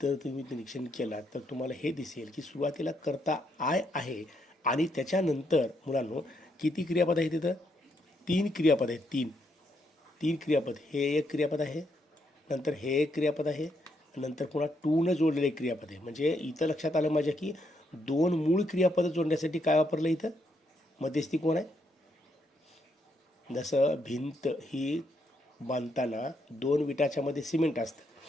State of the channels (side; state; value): both; normal; correlation 0.77